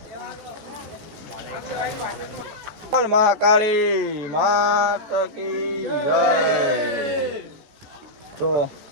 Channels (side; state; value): left; late; 14 ms